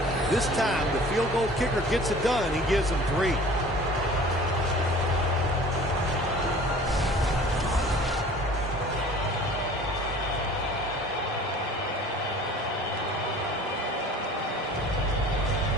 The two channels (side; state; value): both; normal; correlation 0.46